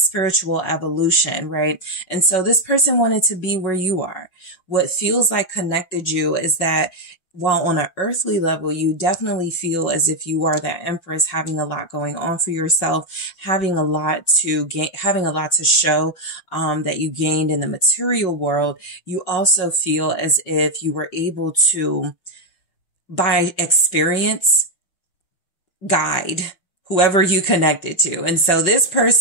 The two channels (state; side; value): late; right; 5.5 ms